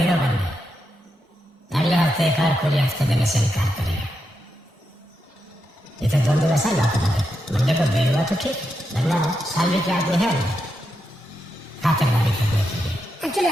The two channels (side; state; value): both; normal; correlation 0.85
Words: बन गए अगले हफ्ते एक और पूरे हफ्ते देने से इनकार करेगा ये तो दोनों वैसा लौट लगे मंडे को बेल हुआ तो ठीक वरना साली के आदमी है खातिरदारी करने के लिए एक्चुअली